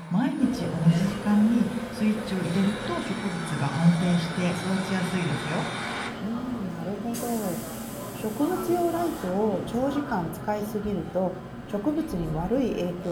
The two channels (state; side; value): identical; both; correlation 1.00